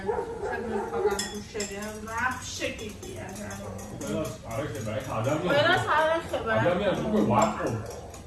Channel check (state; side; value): identical; both; correlation 1.00